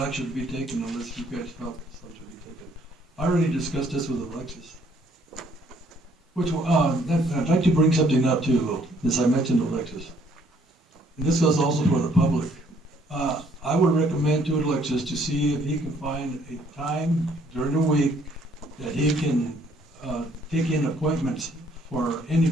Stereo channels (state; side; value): normal; both; correlation 0.63